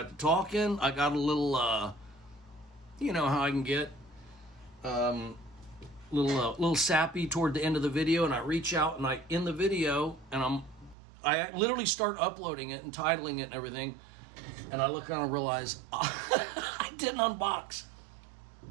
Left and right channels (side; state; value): left; drops out; at 11.0 s